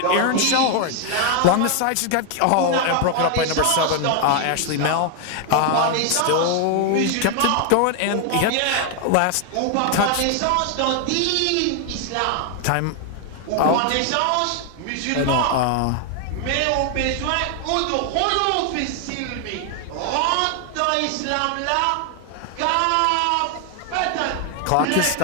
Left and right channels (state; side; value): different; both; correlation 0.00